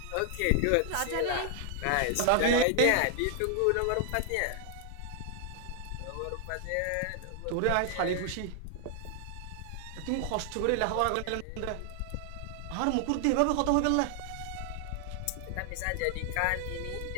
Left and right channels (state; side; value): different; both; correlation 0.00